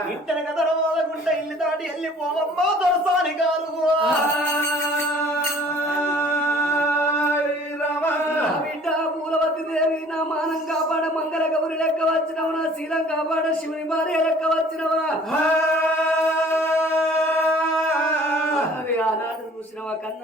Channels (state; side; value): normal; both; correlation 0.52